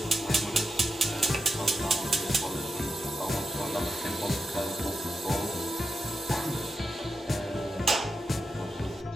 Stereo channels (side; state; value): both; normal; correlation 0.88